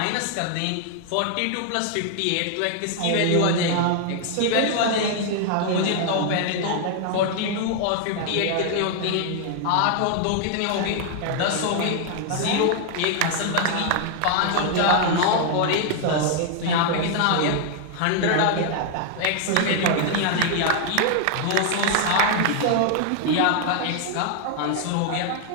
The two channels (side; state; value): both; different; correlation 0.00